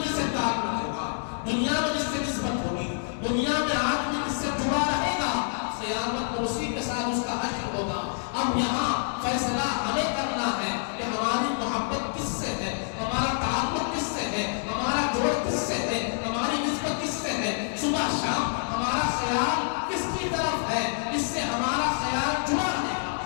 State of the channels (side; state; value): right; silent; digital silence